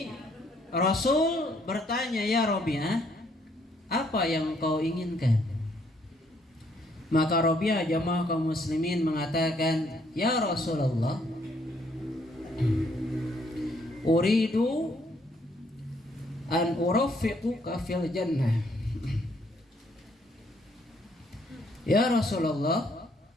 Rasul bertanya, ya Rabi'ah, apa yang kau inginkan? Maka Rabi'ah jamaah kaum muslimin mengatakan, ya Rasulullah, uridu an urafiquka fil jannah. Ya Rasulullah,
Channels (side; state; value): both; normal; correlation 0.68